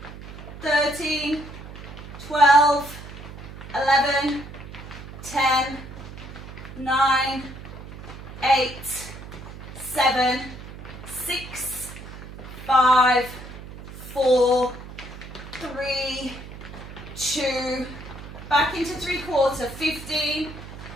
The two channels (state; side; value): noise; right; hum, 13 dB below the sound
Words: 13, 12, 11, 10, 9, 8, 7, 6, 5, 4, 3, 2. Back into 3/4. 15,